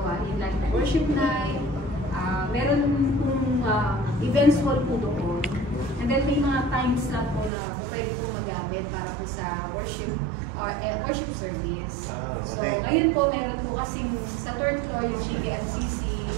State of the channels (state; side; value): drops out; left; at 7.5 s